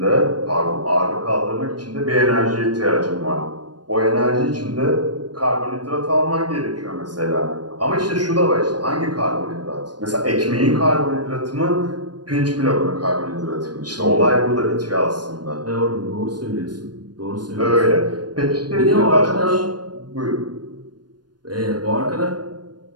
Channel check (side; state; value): left; late; 0.70 ms